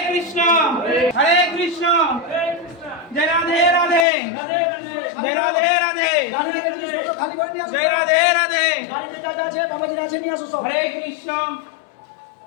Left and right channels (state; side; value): drops out; right; at 4.0 s